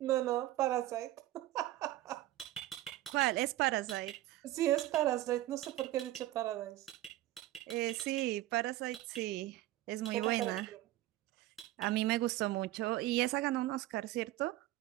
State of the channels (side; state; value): left; quieter; 15.5 dB